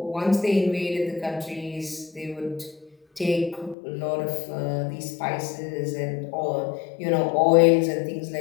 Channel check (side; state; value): right; drops out; at 3.8 s